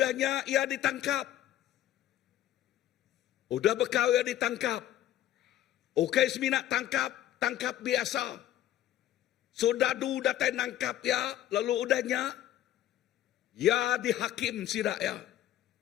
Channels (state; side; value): quieter; right; 12.6 dB